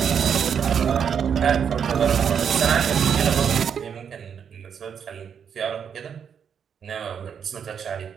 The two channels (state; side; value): quieter; left; 7.5 dB